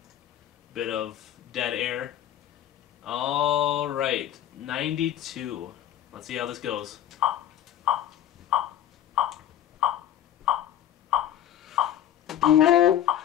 bit of dead air. Alright, 92. Let's see how this goes.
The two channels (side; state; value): right; quieter; 11.3 dB